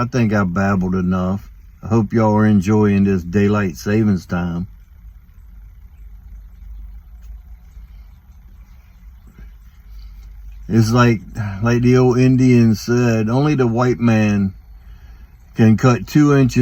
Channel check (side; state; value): both; identical; correlation 1.00